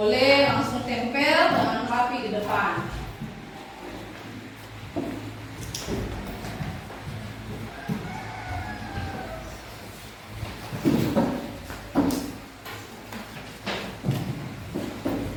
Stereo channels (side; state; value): both; identical; correlation 1.00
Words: langsung tempel dengan rapi di depan.